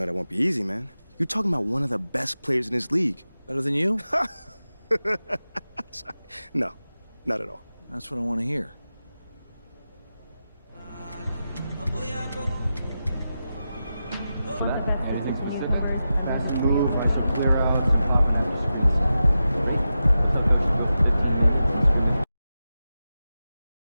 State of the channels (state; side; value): inverted; both; correlation -0.92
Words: that won't be easy, man. You're talking about one of the best players in this league. Better than you? Sorry. No, not at all. That's what I want to hear.